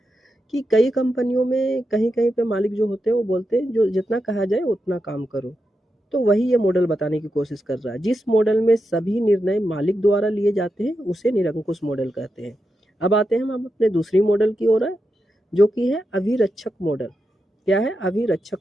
कि कई कंपनियों में कहीं कहीं पे मालिक जो होते हैं वो बोलते हैं जो जितना कहा जाए उतना काम करो। तो वही ये मॉडल बताने की कोशिश कर रहा है। जिस मॉडल में सभी निर्णय मालिक द्वारा लिए जाते हैं उसे निरंकुश मॉडल कहते हैं। अब आते हैं हम अपने दूसरी मॉडल की ओर, जो कि है अभिरक्षक मॉडल। क्या है? अभिरक्षक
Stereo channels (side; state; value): both; normal; correlation 0.87